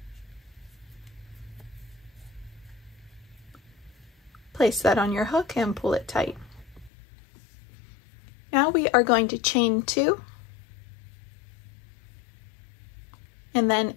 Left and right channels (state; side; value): drops out; right; at 6.9 s